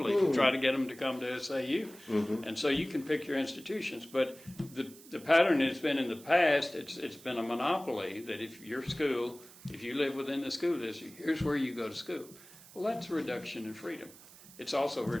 to try to get them to come to SAU. And so you can pick your institutions, but the pattern has been in the past, it's been a monopoly that if your school, if you live within the school district, here's where you go to school. Well, that's a reduction in freedom. It's also a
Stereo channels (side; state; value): right; noise; hiss, 20 dB below the sound